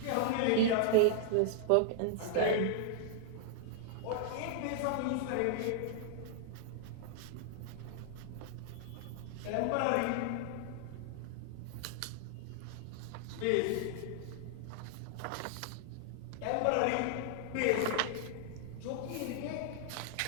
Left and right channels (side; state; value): both; different; correlation -0.01